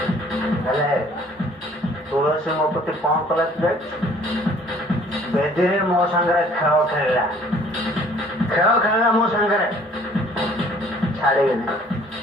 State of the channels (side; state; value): both; normal; correlation 0.56